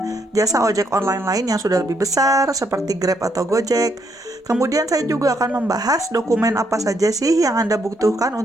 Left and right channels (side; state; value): both; normal; correlation 0.75